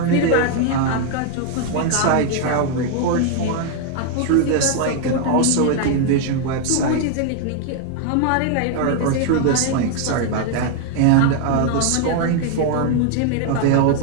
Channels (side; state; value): both; different; correlation 0.00